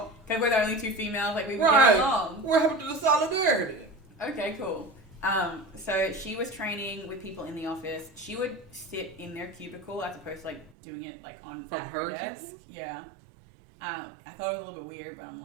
because we're the only two females, like, we would Right. get along. What happened to the solidarity? Okay, cool. So she was training with people in the office. She would sit in their cubicle as opposed to, like, doing it, like, on From at her her desk. cubicle? Yeah. I thought it was a little bit weird, but I'm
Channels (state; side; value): drops out; left; at 10.7 s